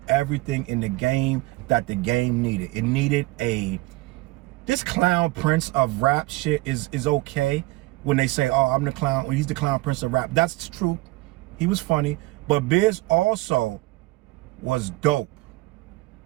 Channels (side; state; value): left; quieter; 20.9 dB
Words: everything in the game that the game needed. It needed this clown prince of rap shit is okay when they say, oh, I'm the clown, well, he's the clown prince of rap. That's true. He was funny. But Biz also was dope.